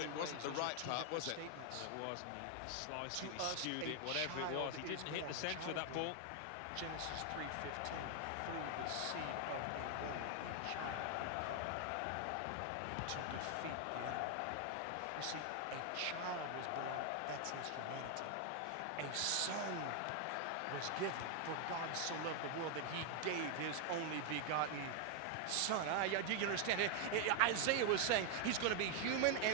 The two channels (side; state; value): both; different; correlation 0.00